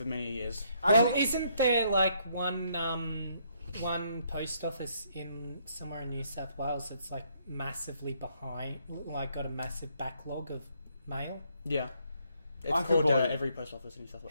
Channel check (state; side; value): inverted; both; correlation -0.70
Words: many years. Well, isn't there one post office in somewhere in New South Wales that's massively behind, got a massive backlog of mail? Yeah. It's I could called believe it. every post office in New South